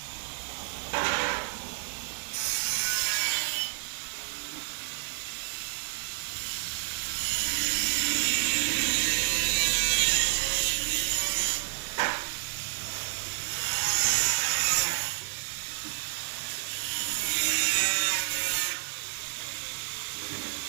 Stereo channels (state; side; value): silent; left; digital silence